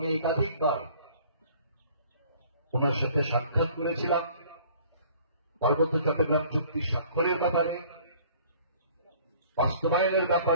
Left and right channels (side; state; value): both; inverted; correlation -0.53